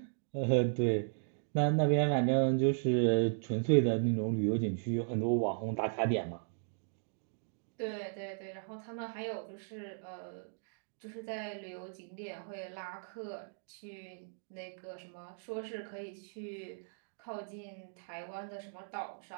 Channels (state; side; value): silent; left; digital silence